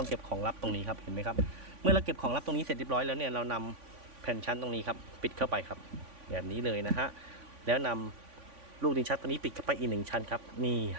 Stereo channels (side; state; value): left; late; 3.5 ms